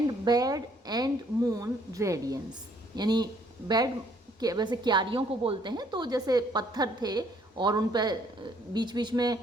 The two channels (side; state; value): both; normal; correlation 0.64